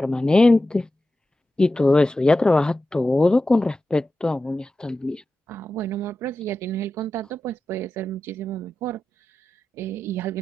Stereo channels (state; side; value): normal; both; correlation 0.93